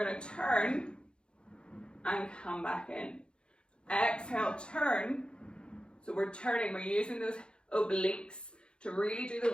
going to turn and come back in. Exhale, turn. So we're turning, we're using those obliques to really do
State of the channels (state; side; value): late; right; 0.054 ms